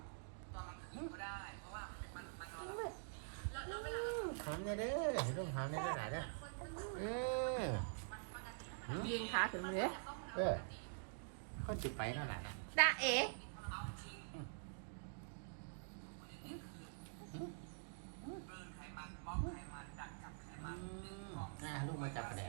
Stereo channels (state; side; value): silent; left; digital silence